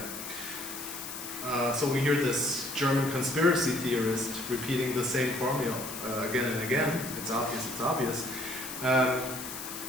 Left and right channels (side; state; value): left; noise; hiss, 9 dB below the sound